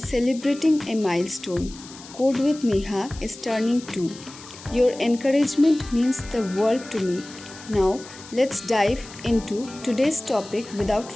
a milestone. Code with Neha is turning 2. Your encouragement means the world to me. Now let's dive into today's topic without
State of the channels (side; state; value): left; noise; hiss, 17 dB below the sound